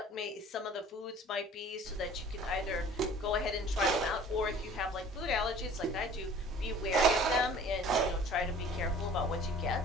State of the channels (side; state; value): both; normal; correlation 0.48